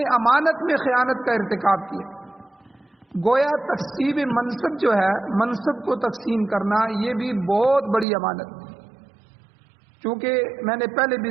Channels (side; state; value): left; drops out; at 8.1 s